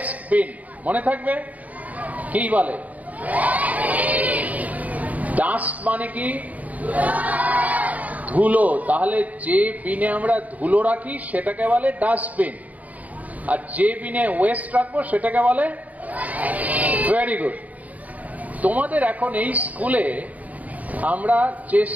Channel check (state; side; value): late; left; 0.073 ms